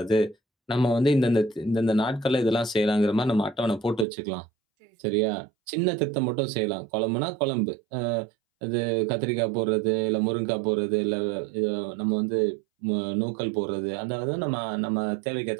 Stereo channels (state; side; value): drops out; left; at 4.0 s